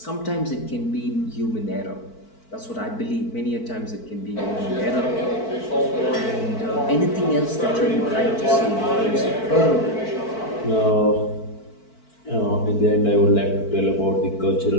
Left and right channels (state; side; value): late; right; 4.5 ms